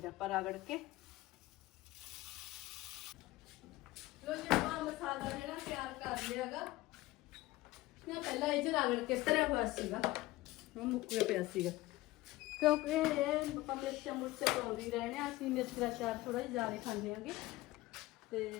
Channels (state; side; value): quieter; right; 18.4 dB